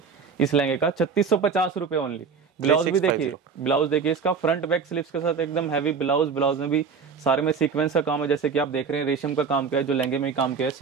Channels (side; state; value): left; quieter; 5.8 dB